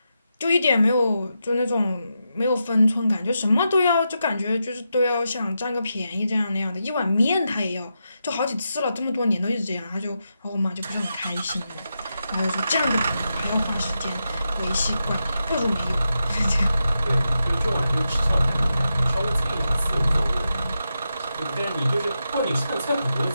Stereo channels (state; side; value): inverted; both; correlation -0.87